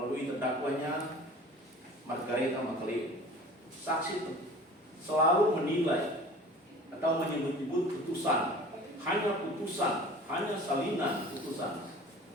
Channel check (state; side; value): normal; both; correlation 0.43